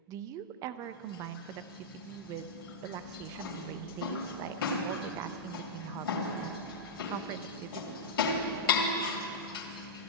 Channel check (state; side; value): normal; both; correlation -0.08